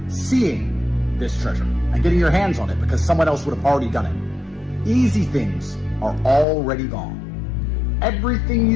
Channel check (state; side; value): drops out; right; at 6.5 s